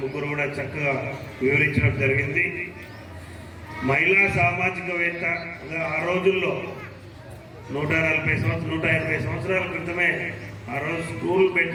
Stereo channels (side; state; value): both; identical; correlation 1.00